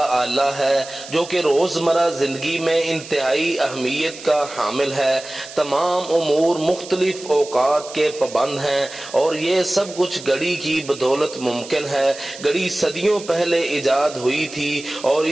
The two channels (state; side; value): noise; right; hiss, 15 dB below the sound